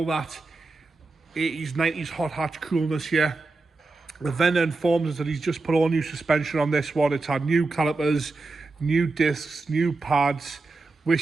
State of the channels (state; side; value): quieter; left; 3.5 dB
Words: that 80s 90s hot hatch coolness here. The vendor informs us that he's just put all new suspension on this one. It's had new calipers, new discs, new pads,